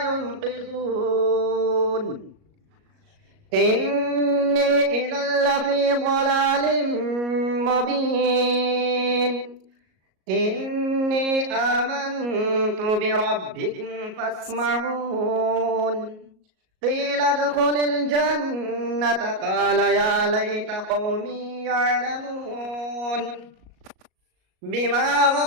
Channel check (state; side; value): late; left; 37 ms